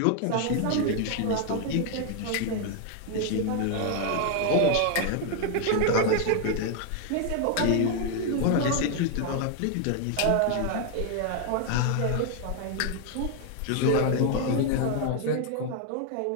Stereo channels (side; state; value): both; different; correlation 0.00